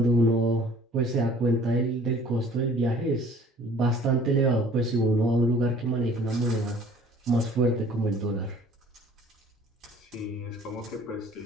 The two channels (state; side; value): normal; both; correlation 0.52